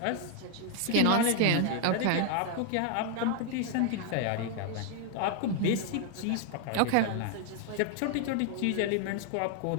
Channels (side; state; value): both; different; correlation 0.00